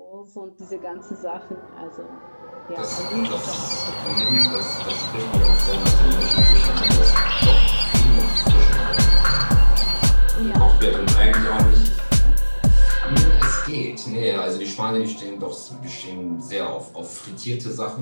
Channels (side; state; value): both; inverted; correlation -1.00